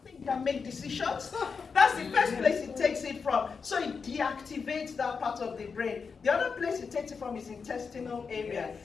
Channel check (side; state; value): right; quieter; 5.4 dB